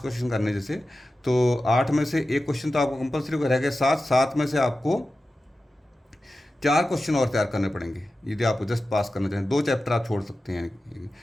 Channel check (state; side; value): normal; both; correlation 0.93